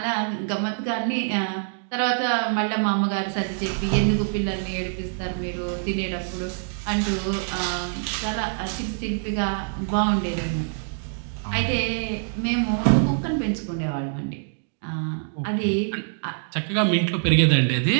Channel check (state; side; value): silent; left; digital silence